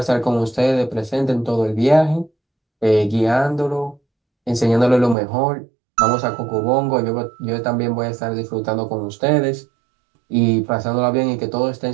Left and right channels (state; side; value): drops out; left; at 5.2 s